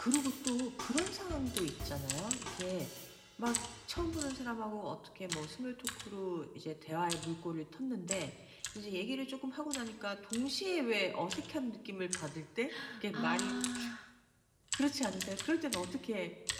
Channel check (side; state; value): both; identical; correlation 1.00